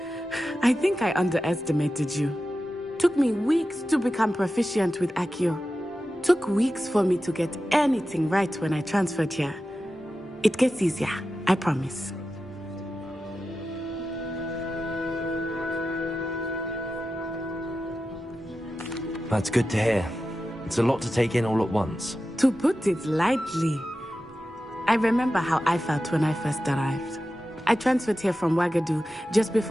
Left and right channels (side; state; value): both; normal; correlation 0.92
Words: I think I underestimated you. Took me weeks to become proficient with Accio. Took weeks for me to get anything right when I transferred here. It gets easier, I promise. That's good to hear. It's a lot to take in all at once. To put it lightly, I remember how I felt when I first arrived. I transferred here from Ouagadougou just